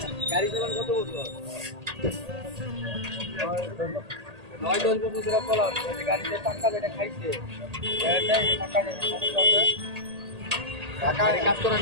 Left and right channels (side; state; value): left; late; 1.8 ms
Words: গাড়ি চালান কত বছর 9-10 বছর ধরে চলাম গাড়িতে টাকা যেটা খাইছে টাকা কাজ করার